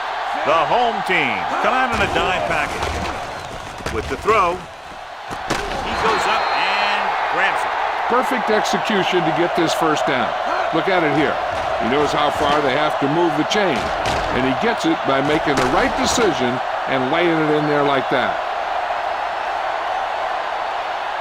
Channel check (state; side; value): identical; both; correlation 1.00